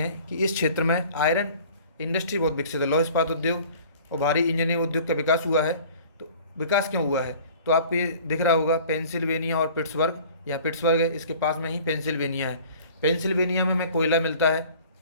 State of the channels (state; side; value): inverted; both; correlation -0.47